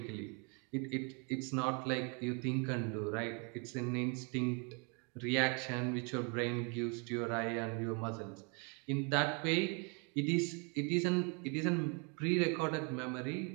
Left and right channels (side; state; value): left; quieter; 35.1 dB